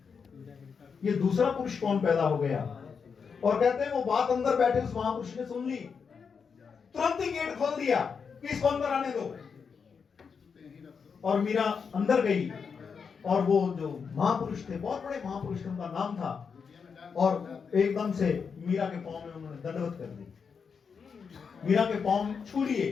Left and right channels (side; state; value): right; quieter; 6.0 dB